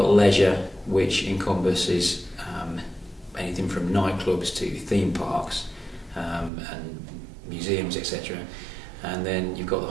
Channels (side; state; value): left; drops out; at 6.5 s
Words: leisure, which encompasses anything from nightclubs to theme parks and museums, etc. And then you've got the